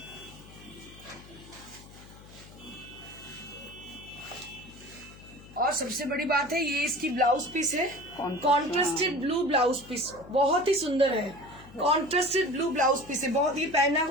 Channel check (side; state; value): left; noise; hum, 19 dB below the sound